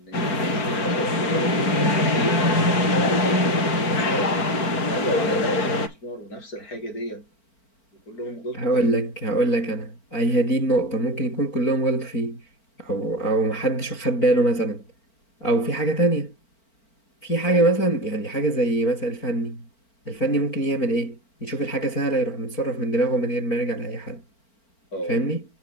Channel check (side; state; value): right; late; 4.4 ms